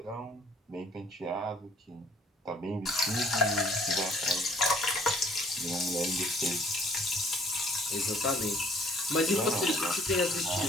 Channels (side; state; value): both; normal; correlation 0.57